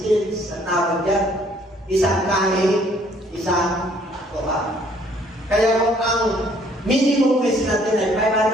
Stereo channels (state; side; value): normal; both; correlation 0.62